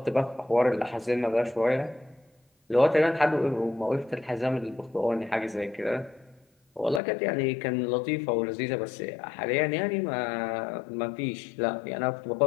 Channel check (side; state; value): right; drops out; at 7.0 s